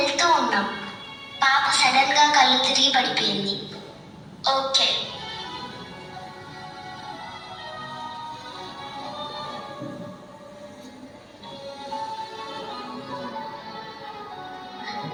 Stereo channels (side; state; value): both; identical; correlation 1.00